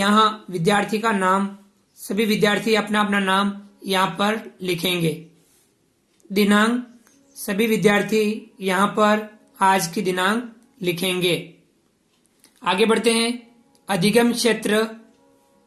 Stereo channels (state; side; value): identical; both; correlation 1.00